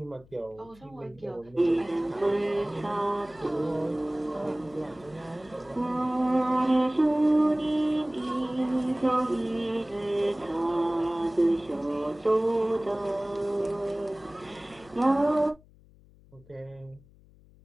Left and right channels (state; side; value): noise; left; hum, 26 dB below the sound